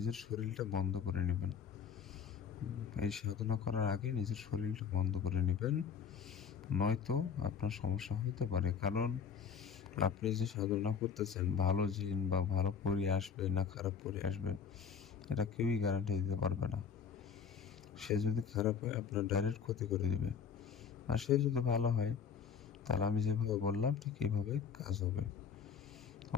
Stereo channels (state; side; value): quieter; right; 6.8 dB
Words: শরীরটা বন্ধ করে নেবেন। এই সাধনা করার আগে নিজের শরীরটা বন্ধ করে নেবেন, নয়তো আপনার সমস্যা হতে পারে। কারণ আপনি যে সাধনা করতেছেন ভালো জিন বা ভালো পরি আসবে না খারাপ পরি আসবে এটা কেউই গ্যারান্টি দিতে পারবে না। সে যদি খারাপ হয় আপনার ডাইরেক্ট ক্ষতি করে দিবে, আর সে যদি ভালো হয় তাহলে আমি যেভাবে বললাম ঠিক এইভাবে কাজ হবে।